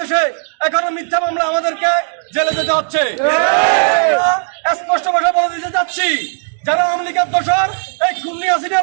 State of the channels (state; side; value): silent; left; digital silence